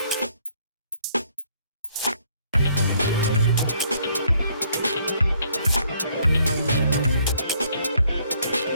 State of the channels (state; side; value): inverted; both; correlation -0.66